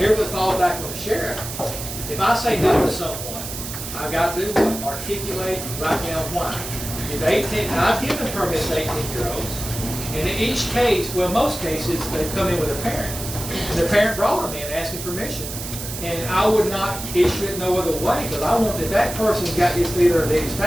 the thought back with the sheriff. If I say no to someone, I've got to do what? Articulate, write down why. If 18, now I've given permits to 18-year-olds. And in each case, well, most cases, they come in with a parent. And the parent brought them in asking permission. And I would not issue it no other way, because I want that that person's got his leader at Daddy's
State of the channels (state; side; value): noise; right; hiss, 8 dB below the sound